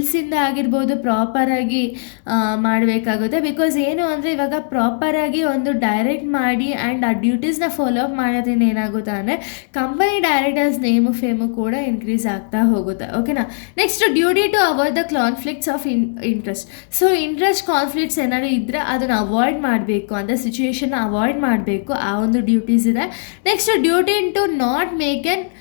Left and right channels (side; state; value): right; silent; digital silence